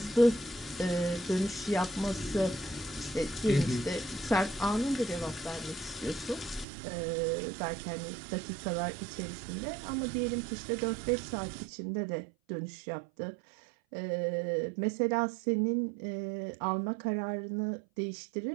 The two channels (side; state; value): left; drops out; at 6.7 s